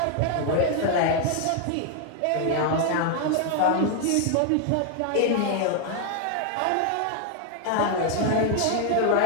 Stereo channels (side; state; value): both; different; correlation 0.01